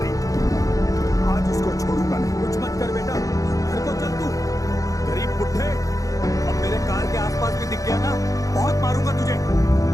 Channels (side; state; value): right; late; 0.16 ms